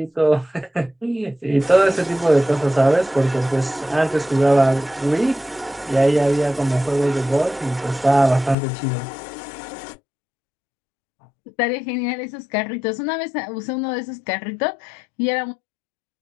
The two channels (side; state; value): right; drops out; at 8.6 s